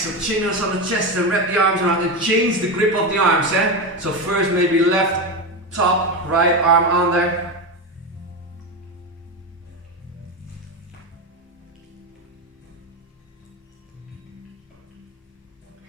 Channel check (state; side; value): normal; both; correlation 0.16